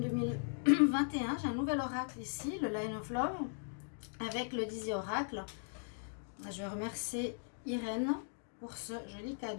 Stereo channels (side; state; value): right; silent; digital silence